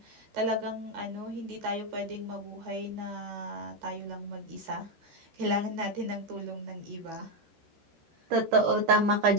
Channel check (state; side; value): late; left; 13 ms